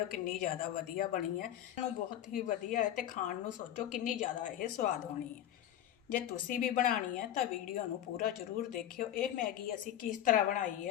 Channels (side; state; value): right; quieter; 11.5 dB